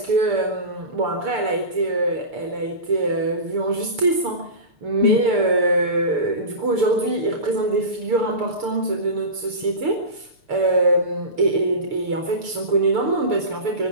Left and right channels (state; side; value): late; left; 6.7 ms